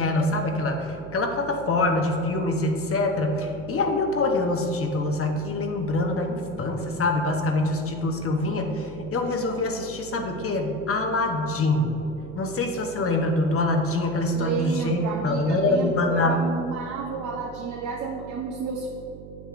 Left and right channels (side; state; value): right; noise; hum, 15 dB below the sound